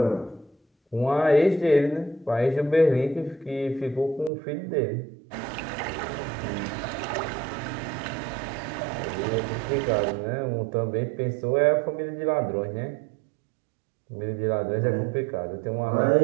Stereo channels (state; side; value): drops out; left; at 4.3 s